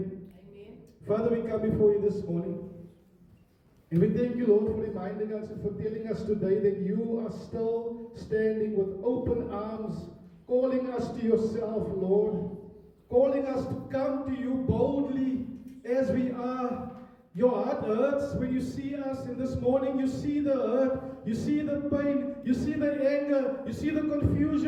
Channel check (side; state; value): both; identical; correlation 1.00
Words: Father, we come before you this morning. And we thank you, Lord, for reminding us and for telling us today that you are still standing with open arms, calling us to yourself, Lord, calling us to come to you boldly as we are. Your heart hurts when you see us, and this morning you see the hurt, you see the pain, you see the anger, you see the